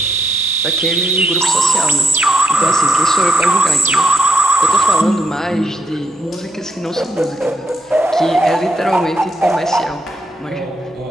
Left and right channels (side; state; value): both; normal; correlation 0.79